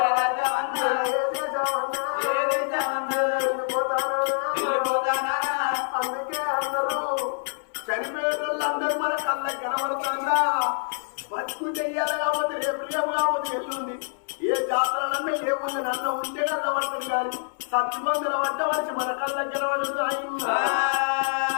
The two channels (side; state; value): right; silent; 61 dB below the other